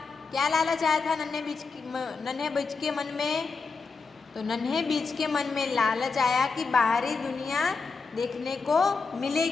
क्या लालच आया था नन्हे बीज के मन में? तो नन्हे बीज के मन में लालच आया कि बाहरी दुनिया देखने को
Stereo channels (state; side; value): quieter; right; 4.6 dB